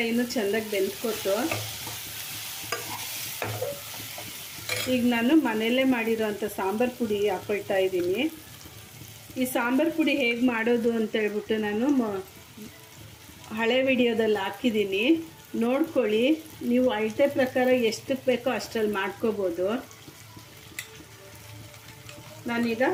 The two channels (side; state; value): both; identical; correlation 1.00